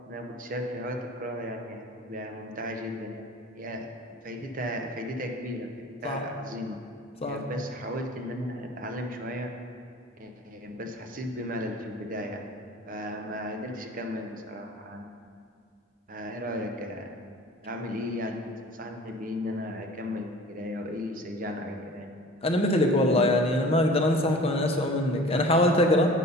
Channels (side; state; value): both; normal; correlation 0.43